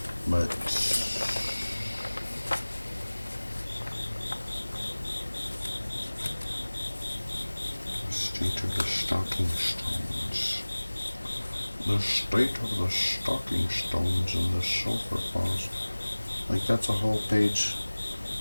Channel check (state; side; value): inverted; both; correlation -1.00